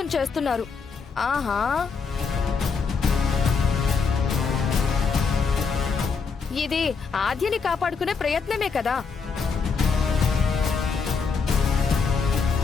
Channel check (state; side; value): quieter; right; 5.3 dB